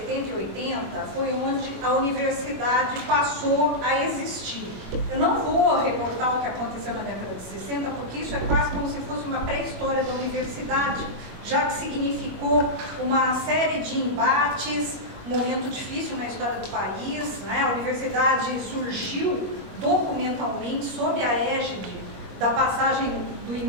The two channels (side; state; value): left; late; 21 ms